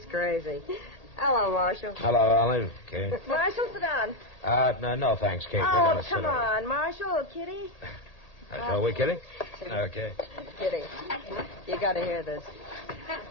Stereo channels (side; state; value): right; late; 1.8 ms